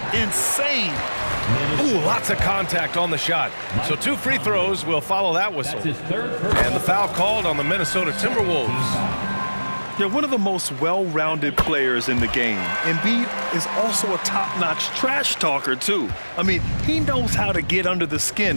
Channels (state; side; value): inverted; both; correlation -1.00